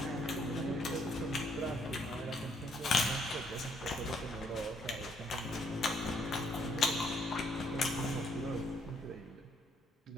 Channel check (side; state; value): both; normal; correlation 0.68